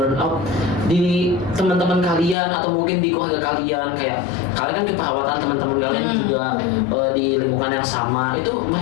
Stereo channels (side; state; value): right; drops out; at 2.4 s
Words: di teman-teman kalian atau mungkin di keluarga kalian, kayak kalian kan keperawatan teman-teman kalian juga di lingkungan yang sama, itu